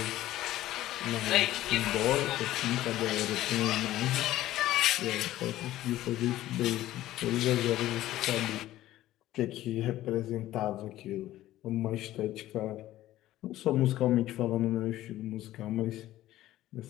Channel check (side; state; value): right; quieter; 14.8 dB